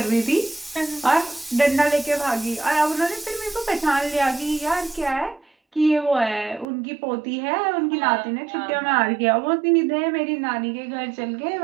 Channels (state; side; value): drops out; left; at 6.7 s